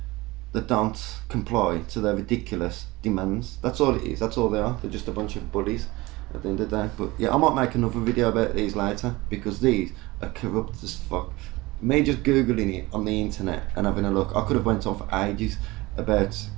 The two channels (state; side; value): quieter; left; 21.1 dB